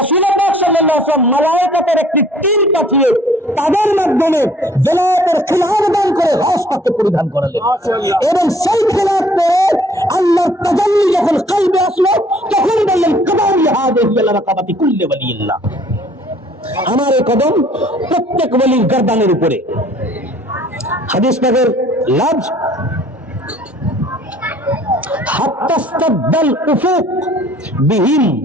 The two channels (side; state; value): both; normal; correlation 0.56